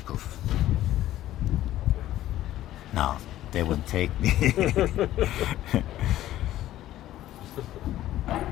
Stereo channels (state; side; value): quieter; right; 13.8 dB